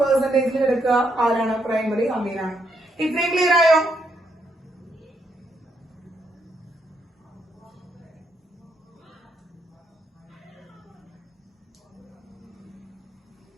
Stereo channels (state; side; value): normal; both; correlation 0.77